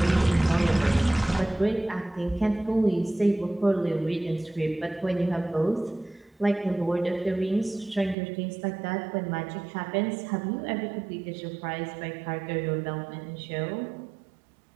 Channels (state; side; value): drops out; left; at 8.2 s